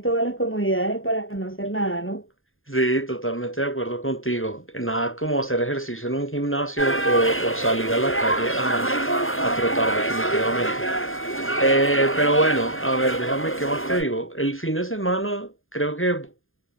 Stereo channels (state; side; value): late; right; 0.59 ms